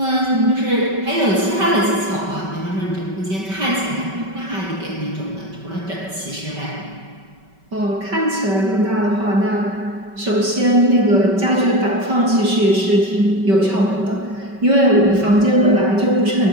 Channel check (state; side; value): late; left; 5.2 ms